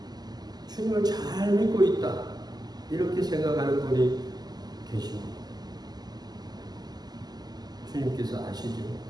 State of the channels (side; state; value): left; late; 0.20 ms